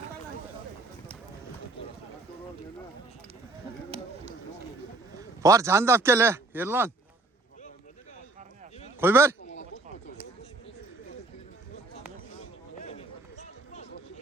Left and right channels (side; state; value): left; quieter; 3.2 dB